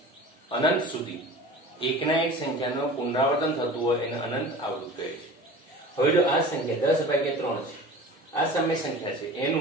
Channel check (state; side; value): normal; both; correlation 0.38